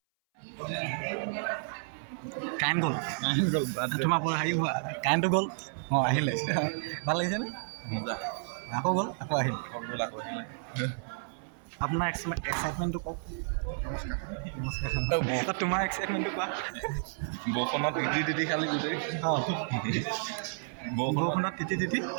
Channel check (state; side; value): silent; left; 57 dB below the other